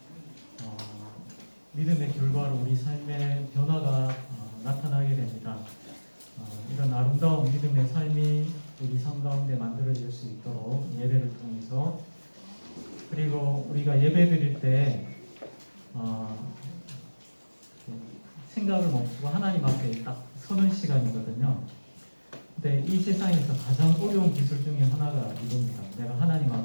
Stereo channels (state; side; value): inverted; both; correlation -1.00